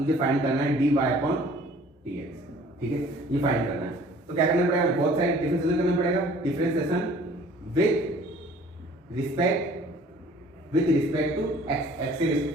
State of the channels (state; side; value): normal; both; correlation 0.52